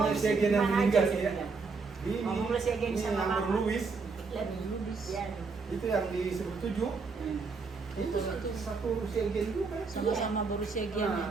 Segian yang meninggal ya. Ini Ngomonglah Segian ini sama nomor Mama. Louis. Lebih lubis ya. Itu yang di 17. Itu satu Segian juga. Sama-sama berusia Nah, giannya.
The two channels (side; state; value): left; quieter; 4.5 dB